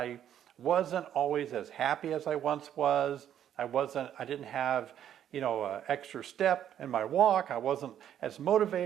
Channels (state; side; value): quieter; left; 10.2 dB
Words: wasn't always as happy as I once was. I didn't have, you know, extra step in my walk. I wasn't as